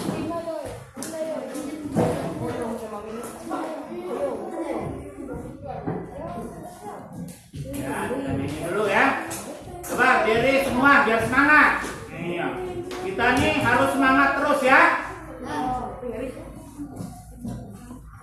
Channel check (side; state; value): both; identical; correlation 1.00